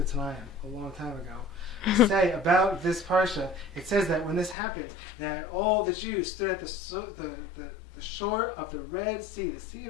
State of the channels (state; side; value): drops out; right; at 4.5 s